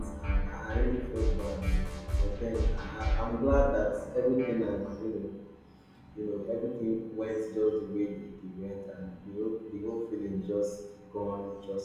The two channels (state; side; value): identical; both; correlation 1.00